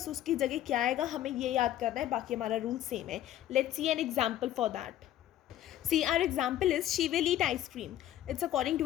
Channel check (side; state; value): right; quieter; 12.5 dB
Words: उसकी जगह क्या आएगा हमें ये याद करना है, बाकी हमारा रूल सेम है. Let's see an example for that. See, our example is she will eat ice cream. It's according